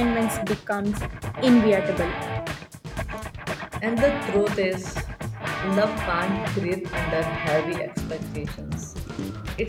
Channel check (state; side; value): identical; both; correlation 1.00